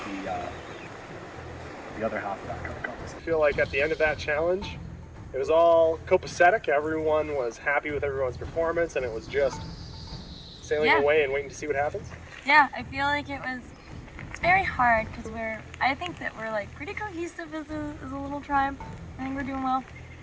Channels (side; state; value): both; identical; correlation 1.00